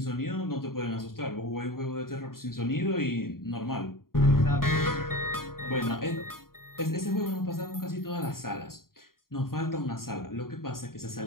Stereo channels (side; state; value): right; late; 0.92 ms